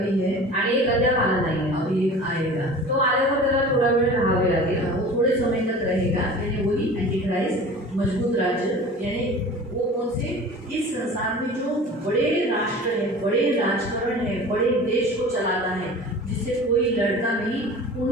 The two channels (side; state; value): both; normal; correlation 0.39